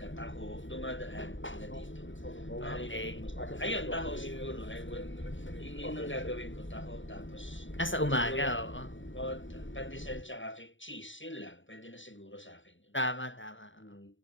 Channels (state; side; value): late; right; 0.56 ms